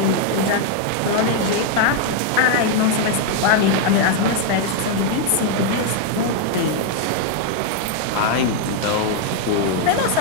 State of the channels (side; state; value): both; different; correlation 0.00